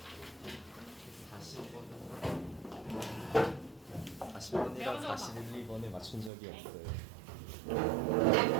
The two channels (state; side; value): drops out; left; at 6.3 s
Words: 40번이랑 41, 2번에 맞춘 적이 없어요.